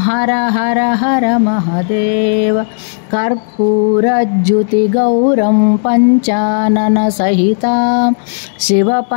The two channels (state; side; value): silent; right; digital silence